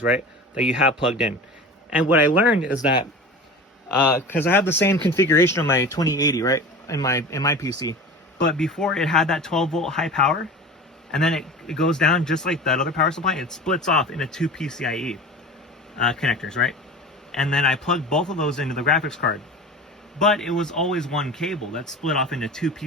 right? That you have plugged in. And what I learned is that because I have the same configuration on my 2080, right, in my PC, but before it had that 12-volt high power, and then it goes down just like that other power supply. It splits off into two PCIe connectors, right? And then I plugged both of those into the graphics card, but it was always one cable that split off into two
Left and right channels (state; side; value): normal; both; correlation 0.35